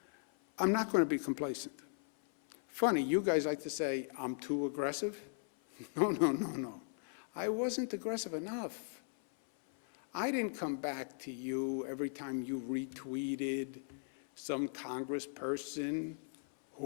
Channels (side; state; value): right; silent; 52 dB below the other